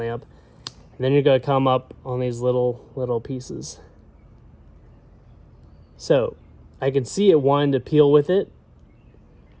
And then you're going to come up on these little pieces. So I can see it wanting to peel with it.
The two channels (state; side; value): identical; both; correlation 1.00